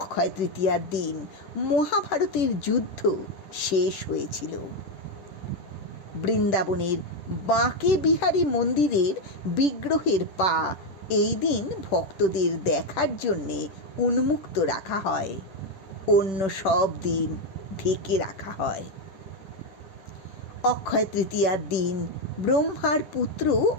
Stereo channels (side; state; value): right; late; 10 ms